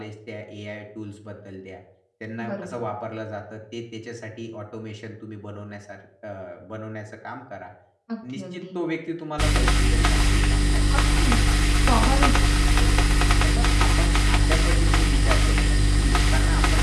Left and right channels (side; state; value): both; identical; correlation 1.00